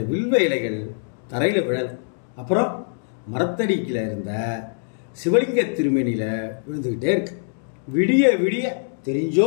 வில்வ இலைகள் தரையில் விழலை. அப்புறம் மரத்தடிக்கில் இருந்த சிவலிங்க திருமேனியில் விழுந்துக்கிட்டே இருக்கு. விடிய விடிய தெரிஞ்சோ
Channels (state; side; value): silent; right; digital silence